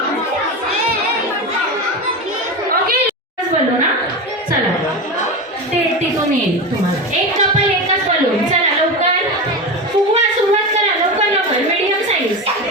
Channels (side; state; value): both; normal; correlation 0.21